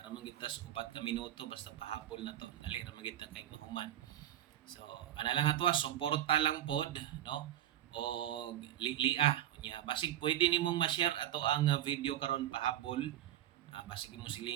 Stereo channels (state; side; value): quieter; left; 12.3 dB